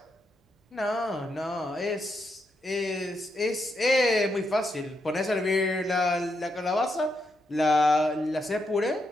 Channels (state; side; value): normal; both; correlation 0.82